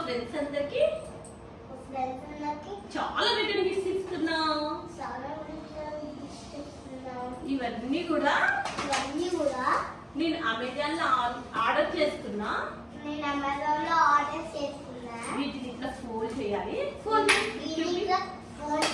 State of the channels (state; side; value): identical; both; correlation 1.00